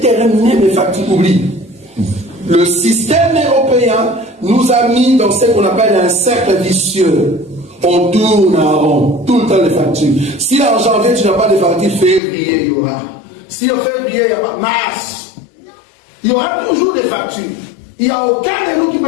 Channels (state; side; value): drops out; right; at 12.2 s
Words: mes factures, oublie. Le système européen nous a mis dans ce qu'on appelle un cercle vicieux. On tourne en rond, tout le temps les factures. Si en janvier tu n'as pas de factures, février il y aura. Si en février il n'y a pas, mars, il y aura toujours des factures. Il n'y a aucun de nous qui